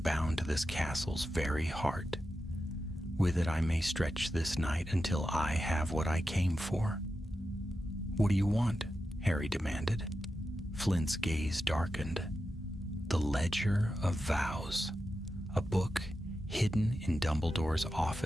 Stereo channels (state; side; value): normal; both; correlation 0.90